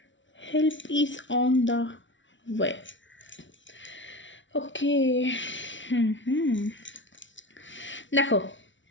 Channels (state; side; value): late; right; 0.55 ms